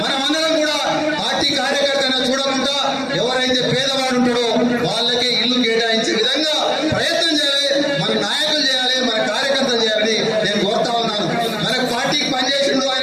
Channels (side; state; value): both; identical; correlation 1.00